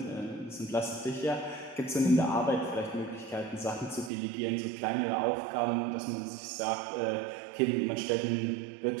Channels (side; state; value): left; drops out; at 4.1 s